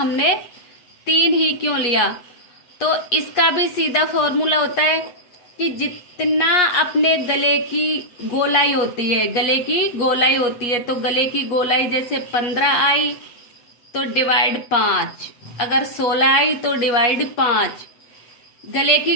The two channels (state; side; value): late; right; 8.4 ms